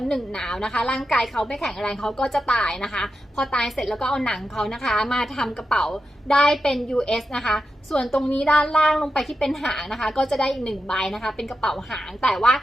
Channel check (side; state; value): both; normal; correlation 0.89